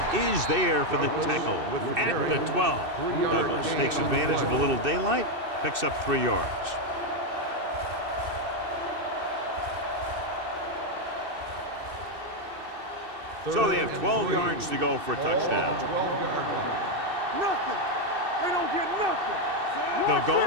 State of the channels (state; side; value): late; left; 2.6 ms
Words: is there for the tackle at the 12. Douglas takes advantage of a little daylight, picks up 3 yards. So they have 12 yards to go for a touchdown. Nothing. They don't get nothing. They'll